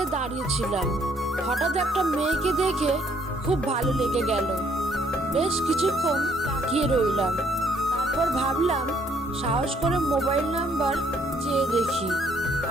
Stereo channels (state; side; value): normal; both; correlation 0.66